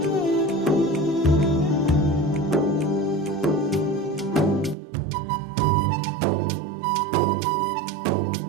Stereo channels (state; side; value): drops out; left; at 4.8 s